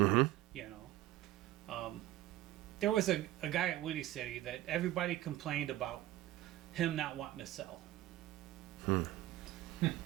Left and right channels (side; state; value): left; quieter; 15.3 dB